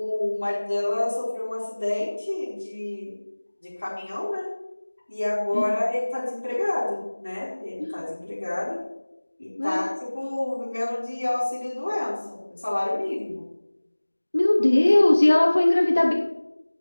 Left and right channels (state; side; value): inverted; both; correlation -1.00